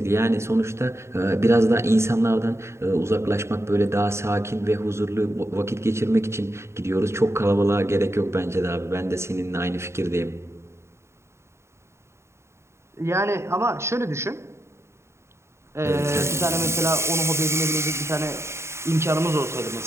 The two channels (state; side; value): late; left; 0.13 ms